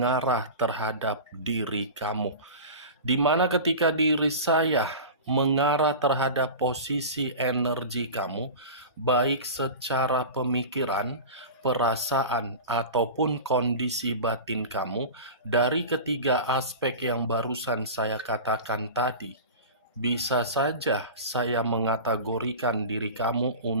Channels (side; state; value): both; inverted; correlation -0.31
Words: terhadap diri kamu. Di mana ketika diri saya mengarah terhadap posisi energi kamu, baik secara pemikiran, perasaan, ataupun kondisi batin kamu, dari ketiga aspek yang barusan saya katakan tadi, bisa saja saya mengategorikan diri kamu